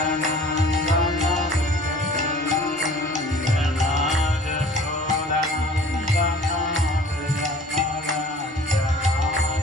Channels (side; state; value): both; normal; correlation 0.48